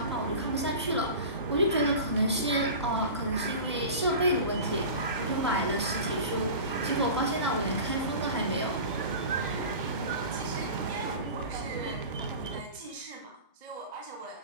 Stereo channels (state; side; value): inverted; both; correlation -0.34